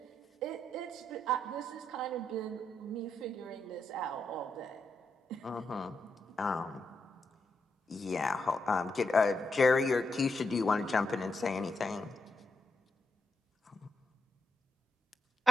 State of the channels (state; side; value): normal; both; correlation 0.83